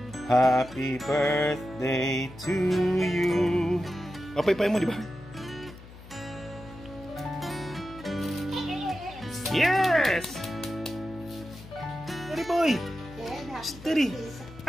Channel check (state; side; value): noise; left; hum, 17 dB below the sound